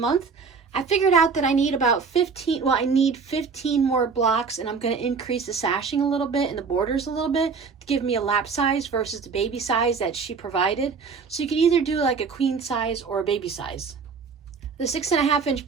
I figured out that I need about 15 more blocks, and I'm going to increase the sashing a little bit and the borders a little bit to give me a lap size versus the baby size that she provided. So you can either do like a queen size or a baby size. The 6.5 inch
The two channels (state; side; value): quieter; left; 5.3 dB